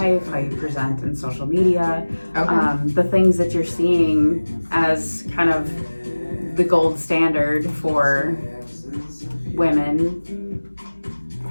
how you present in social media, the things that you're seeing as kind of the gold standard for women,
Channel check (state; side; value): inverted; both; correlation -1.00